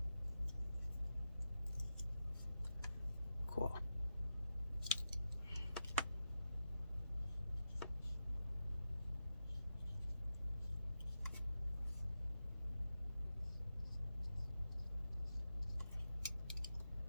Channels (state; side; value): inverted; both; correlation -0.88